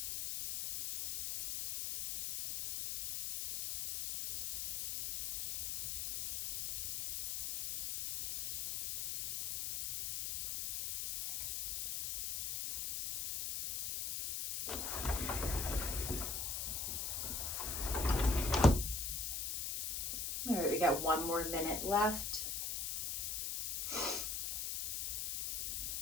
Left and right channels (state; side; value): noise; left; hiss, 2 dB below the sound